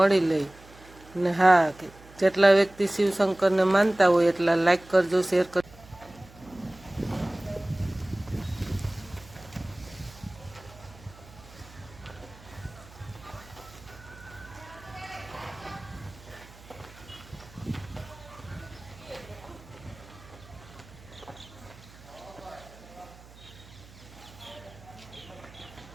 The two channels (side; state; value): right; noise; hum, 21 dB below the sound